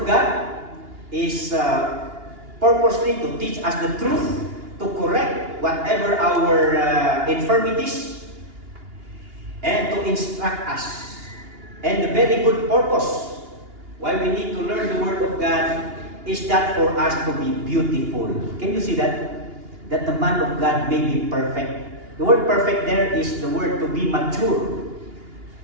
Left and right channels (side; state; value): left; late; 2.8 ms